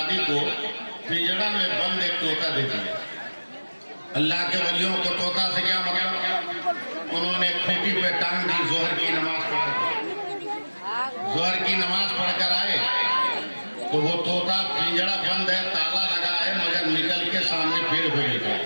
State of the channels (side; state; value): both; inverted; correlation -1.00